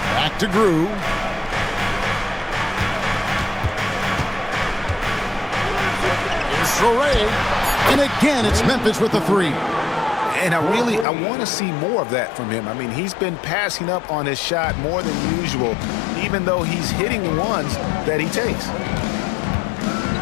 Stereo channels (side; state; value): right; drops out; at 11.1 s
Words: to Grew. Here's Traore. And again, it's Memphis with the three. And I want to see more of that from him. I mean, he's been passing up on his shot more than usual, even though he's hitting the ones that he takes.